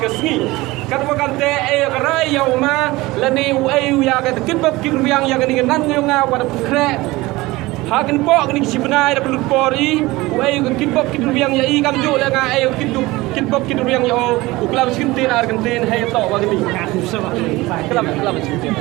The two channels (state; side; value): quieter; left; 20.3 dB